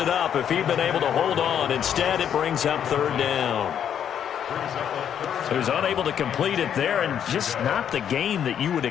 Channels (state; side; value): quieter; right; 9.0 dB